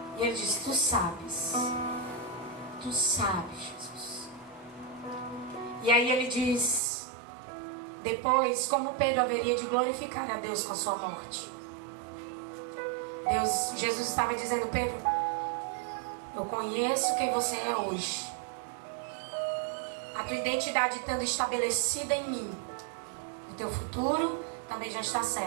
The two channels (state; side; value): drops out; left; at 6.8 s